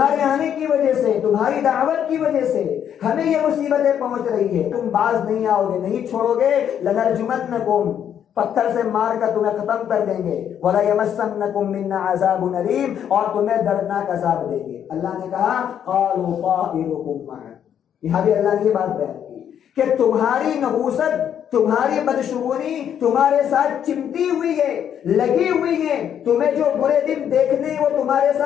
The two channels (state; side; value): quieter; right; 9.2 dB